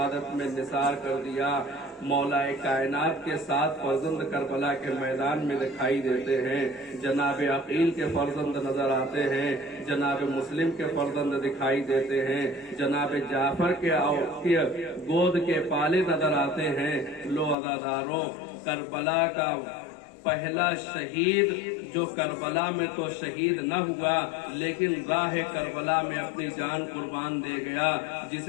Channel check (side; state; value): right; drops out; at 17.6 s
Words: میں نثار کر دیا۔ مولا کائنات کے 7 فرزند کربلا کے میدان میں دکھائی دیتے ہیں، جناب عقیل کے فرزند نظر آتے ہیں، جناب مسلم کے فرزند دکھائی دیتے ہیں، جناب جعفر کے گود کے پالے نظر آتے ہیں۔ لو عزاداروں، کربلا کا پہلا شہید جو کربلا میں تو شہید نہ ہوا لیکن راہ کربلا میں اپنی جان قربان دے گیا،